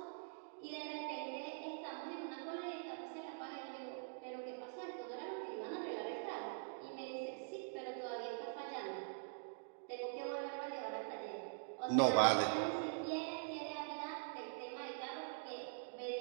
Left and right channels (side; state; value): left; silent; digital silence